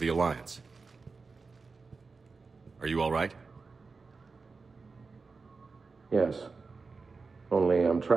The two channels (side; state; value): left; quieter; 4.4 dB